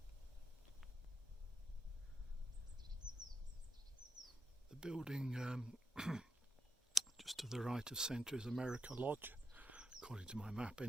The building just to the right of centre is America Lodge, according to my map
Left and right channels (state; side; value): normal; both; correlation 0.84